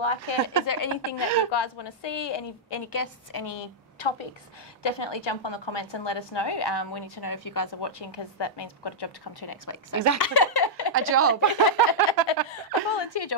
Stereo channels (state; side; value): normal; both; correlation -0.07